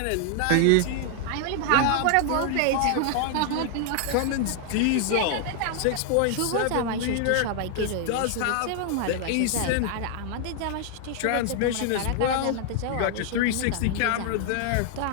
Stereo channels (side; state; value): both; different; correlation 0.00